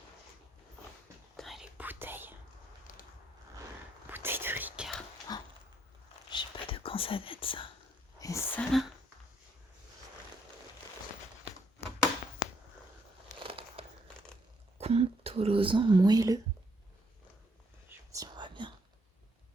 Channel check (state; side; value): normal; both; correlation 0.73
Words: Putain, les bouteilles. Bouteilles de Ricard. Oh. Je sais pas de quand ça date ça. Et ça là. Contolosan moelleux. Je sais pas si on voit bien.